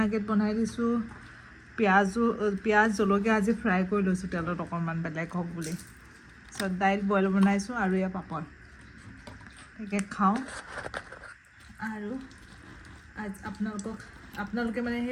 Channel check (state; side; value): identical; both; correlation 1.00